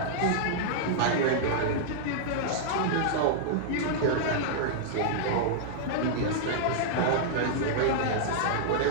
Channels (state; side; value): different; both; correlation -0.01